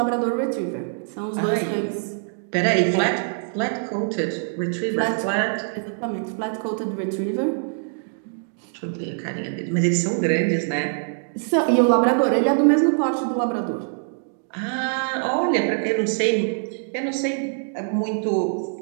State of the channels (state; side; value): silent; left; digital silence